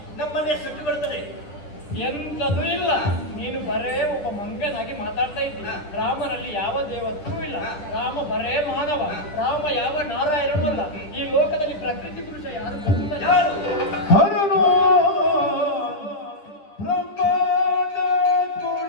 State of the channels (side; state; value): right; late; 10 ms